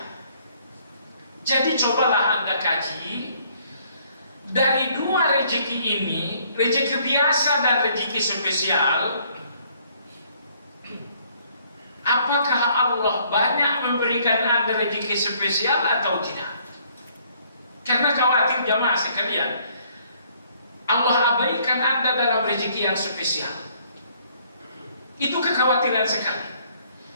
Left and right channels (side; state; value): both; inverted; correlation -0.63